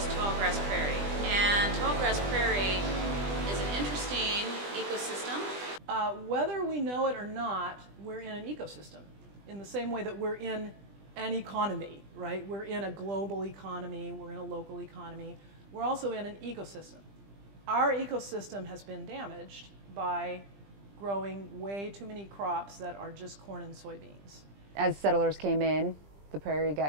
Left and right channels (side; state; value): left; late; 20 ms